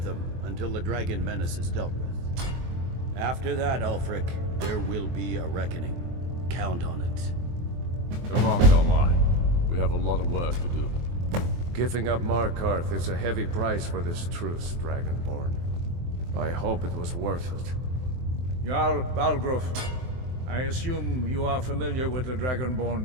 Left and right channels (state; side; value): late; left; 23 ms